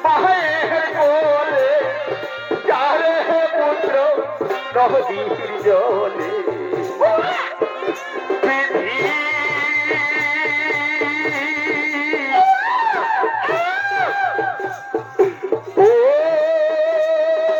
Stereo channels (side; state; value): both; identical; correlation 1.00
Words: মায়ের বলে, যারে পুত্র নদীর জলে।